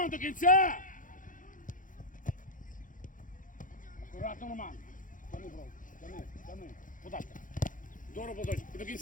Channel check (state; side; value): late; right; 0.38 ms